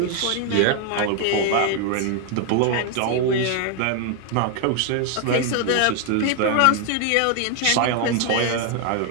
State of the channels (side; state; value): both; different; correlation 0.00